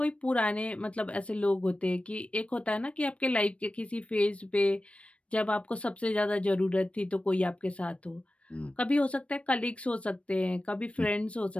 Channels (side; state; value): right; late; 0.062 ms